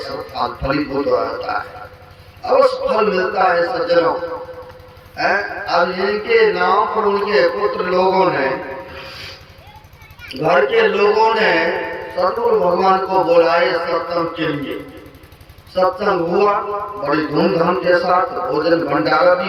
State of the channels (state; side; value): identical; both; correlation 1.00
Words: फल, फलीभूत होता है, अवश्य फल मिलता है सज्जनों। अब इनके नाम पर उनके पुत्र लोगों ने, घर के लोगों ने सतगुरु भगवान को बुलाए सत्संग के लिए। सत्संग हुआ बड़ी धूमधाम के साथ, भोजन भंडारा